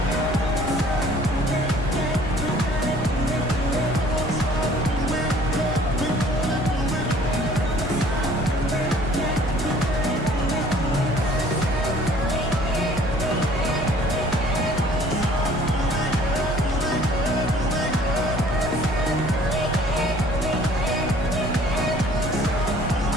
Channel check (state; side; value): normal; both; correlation 0.54